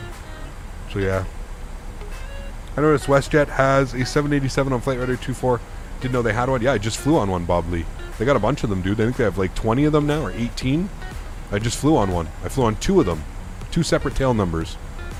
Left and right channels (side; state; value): both; identical; correlation 1.00